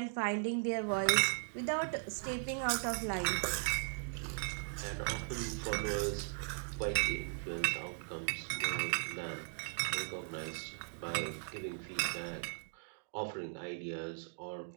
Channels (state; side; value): silent; left; digital silence